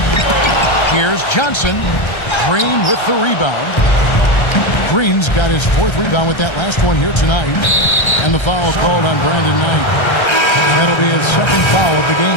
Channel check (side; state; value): right; late; 1.3 ms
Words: Here's Johnson. Green with the rebound. Green's got his 4th rebound with that last one here tonight. And the foul called on Brandon Knight. That'll be his 2nd foul of the